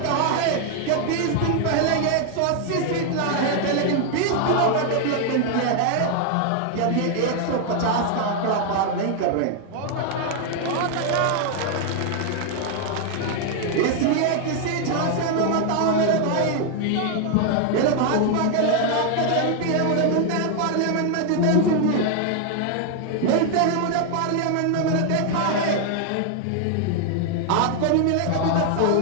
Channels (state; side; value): different; both; correlation 0.00